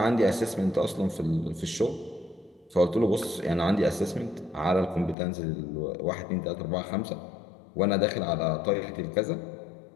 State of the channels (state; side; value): drops out; right; at 5.2 s